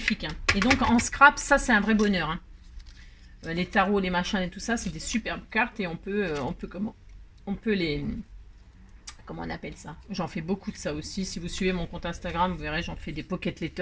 Hein. Et donc, en scrap, ça, c'est un vrai bonheur. Hein. Les tarots, les machins et tout ça, c'est des superbes cartes et on peut les, comment on appelle ça? J'en fais beaucoup de ça aussi. Si vous suivez mon compte Instagram, vous verrez, j'en fais des pocket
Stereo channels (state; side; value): identical; both; correlation 1.00